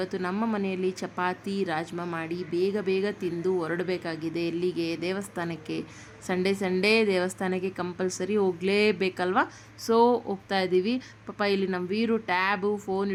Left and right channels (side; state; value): both; identical; correlation 1.00